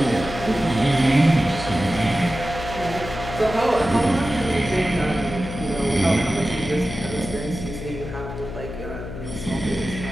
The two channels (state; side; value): noise; left; hum, 9 dB below the sound